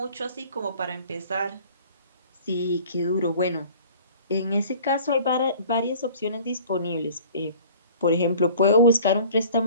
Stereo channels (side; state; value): both; inverted; correlation -0.48